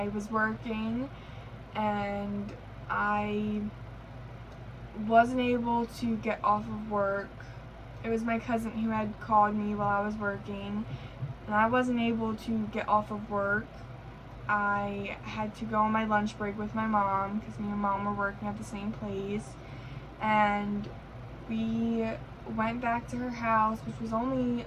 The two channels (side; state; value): both; identical; correlation 1.00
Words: was working and I wasn't able to get off of work. It was my cousin who had called me while I was working, and I wasn't able to get off of work. I had to go on my lunch break with my mom because me and mom were working at the same place, and we went back to her house, which was only